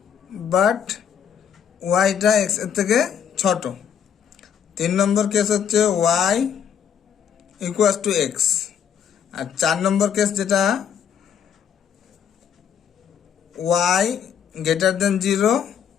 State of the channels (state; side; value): quieter; right; 8.1 dB